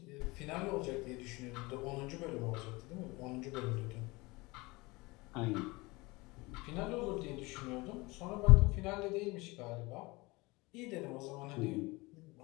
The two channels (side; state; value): right; quieter; 23.5 dB